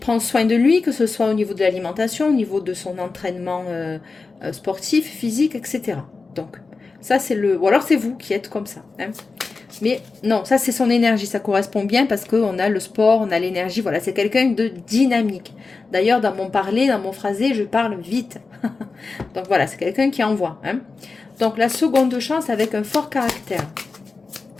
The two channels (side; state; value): right; quieter; 4.1 dB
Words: soin de lui, que ce soit au niveau de l'alimentation, au niveau de son entraînement sportif, physique, etc. Donc, ça c'est le... Ou alors c'est vous qui êtes comme ça. Hein. Mais non, ça c'est son énergie, ça correspond bien parce qu'on a le sport, on a l'énergie, voilà, c'est quelqu'un de dynamique. D'ailleurs, dans mon parler, dans mon phrasé, je parle vite. Donc voilà, c'est quelqu'un qui envoie. Hein. Donc la seconde chance avec un fort caractère.